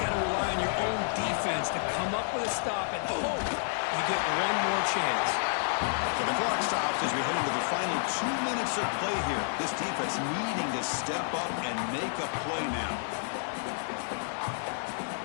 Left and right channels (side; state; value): right; silent; digital silence